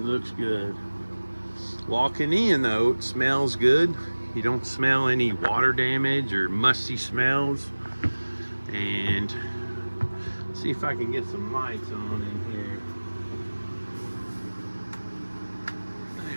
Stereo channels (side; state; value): both; inverted; correlation -1.00